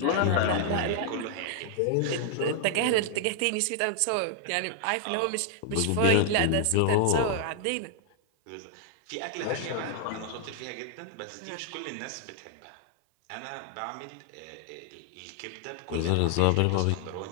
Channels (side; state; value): both; different; correlation 0.00